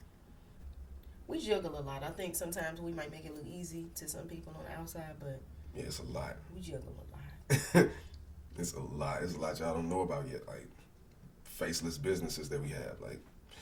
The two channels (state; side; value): identical; both; correlation 1.00